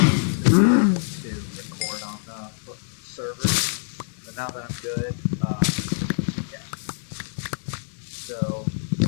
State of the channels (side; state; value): right; silent; digital silence